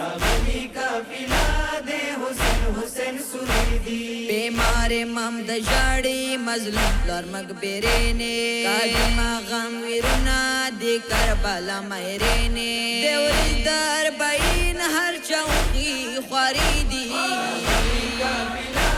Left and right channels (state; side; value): identical; both; correlation 1.00